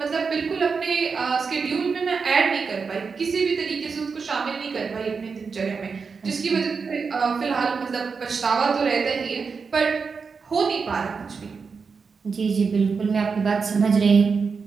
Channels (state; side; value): quieter; left; 5.2 dB